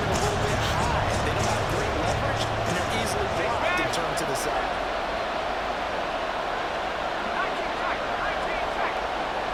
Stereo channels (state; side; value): identical; both; correlation 1.00